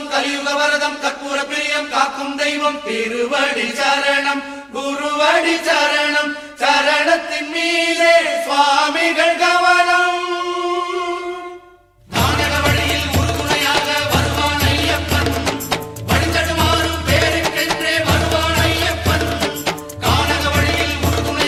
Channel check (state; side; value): identical; both; correlation 1.00